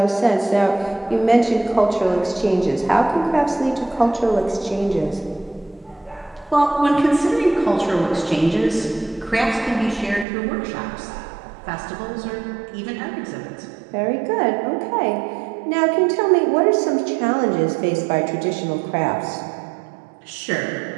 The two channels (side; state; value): left; drops out; at 10.2 s